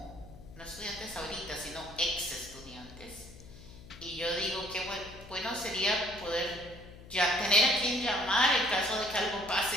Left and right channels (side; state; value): left; noise; hum, 17 dB below the sound